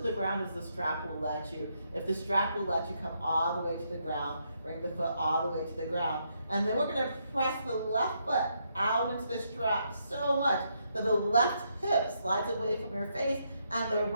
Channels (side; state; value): both; inverted; correlation -0.77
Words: ground as the strap will let you. If the strap will let you, come all the way to the ground. Bring the foot all the way to the ground. And then we're going to press the left foot out into the strap so much that the left hip slides away from your face and the